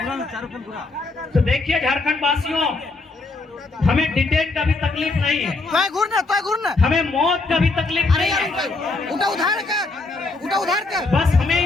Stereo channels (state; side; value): quieter; right; 3.4 dB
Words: तो देखिए झारखंड वासियों, हमें डिटेन का भी तकलीफ नहीं है, हमें मौत का भी तकलीफ नहीं है। उधार कर बस हमें